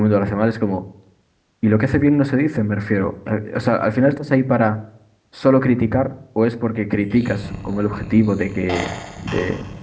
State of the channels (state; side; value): identical; both; correlation 1.00